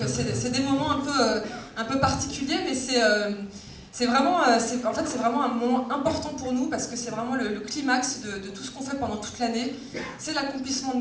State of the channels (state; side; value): identical; both; correlation 1.00